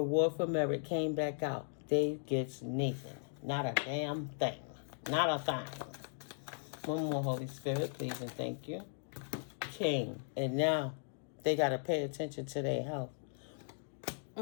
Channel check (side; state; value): right; silent; digital silence